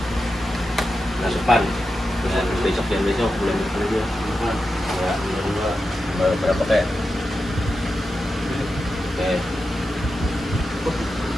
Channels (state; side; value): normal; both; correlation 0.90